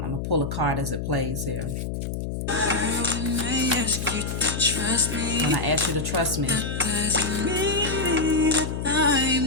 gonna pull a card as it plays here. When I ask you to trust me, that doesn't mean that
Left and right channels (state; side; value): noise; left; hum, 4 dB below the sound